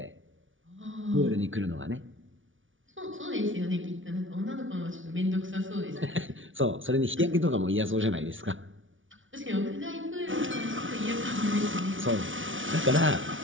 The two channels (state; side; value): late; left; 0.57 ms